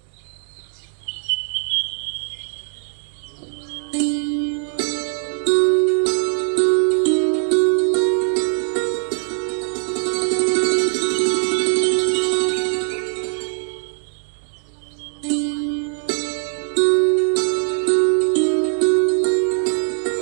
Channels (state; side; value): silent; left; digital silence